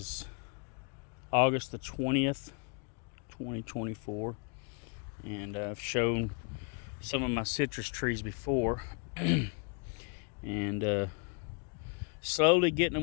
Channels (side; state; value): right; quieter; 37.2 dB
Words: August the 20th, 2024, and I've shown some of my citrus trees before, and slowly getting